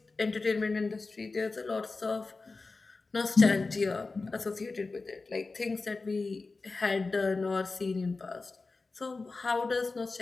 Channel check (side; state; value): right; quieter; 3.8 dB